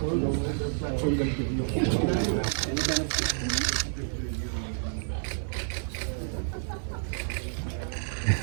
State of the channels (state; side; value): silent; left; digital silence